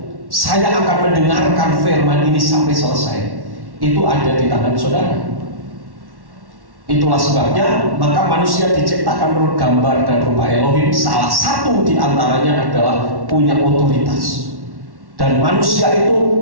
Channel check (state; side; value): late; left; 1.1 ms